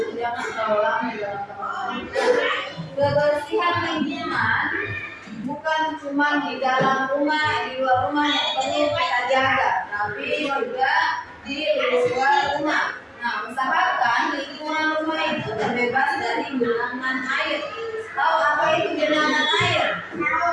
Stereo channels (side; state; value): both; identical; correlation 1.00